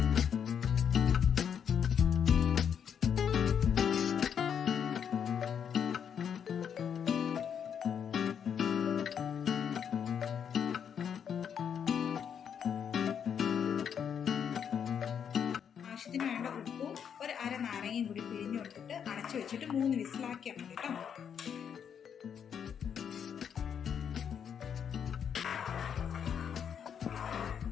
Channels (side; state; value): right; quieter; 7.9 dB